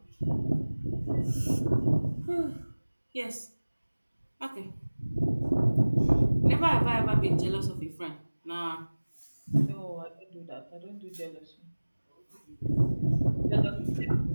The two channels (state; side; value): inverted; both; correlation -1.00